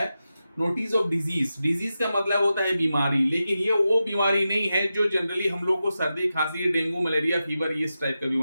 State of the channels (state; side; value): inverted; both; correlation -0.91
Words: नोटिस ऑफ डिजीज। डिजीज का मतलब होता है बीमारी, लेकिन ये वो बीमारी नहीं है जो जनरली हम लोग को सर्दी खांसी डेंगू मलेरिया फीवर इस टाइप का